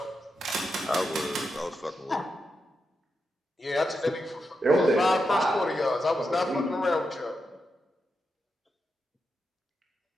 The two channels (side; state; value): both; normal; correlation 0.86